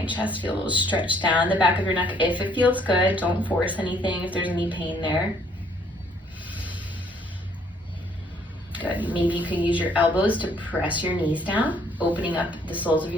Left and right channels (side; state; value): both; normal; correlation 0.64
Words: chest, feel a little stretch down the back of your neck if it feels good. Don't force anything if there's any pain there. Good. Maybe you can use your elbows to press your knees down, opening up the soles of